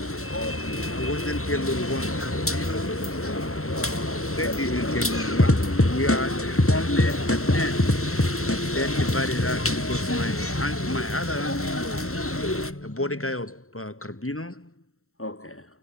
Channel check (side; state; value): right; late; 0.63 ms